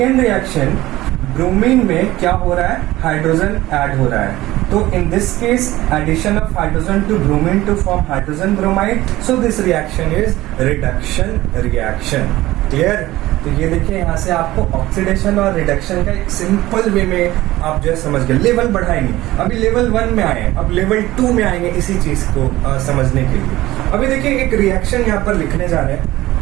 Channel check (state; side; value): quieter; left; 16.9 dB